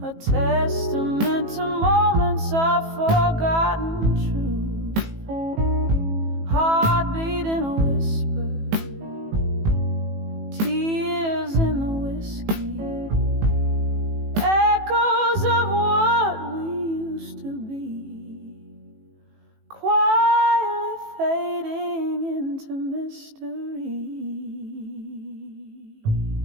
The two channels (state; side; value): late; left; 18 ms